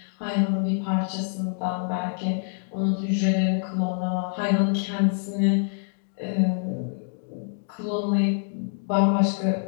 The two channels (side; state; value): right; silent; 59 dB below the other